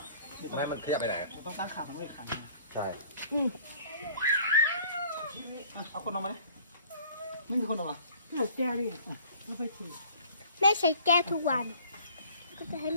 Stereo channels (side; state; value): both; inverted; correlation -0.53